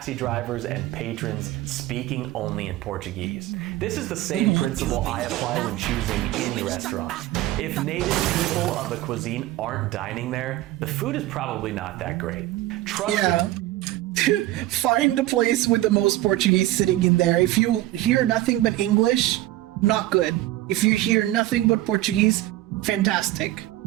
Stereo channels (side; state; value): left; quieter; 15.9 dB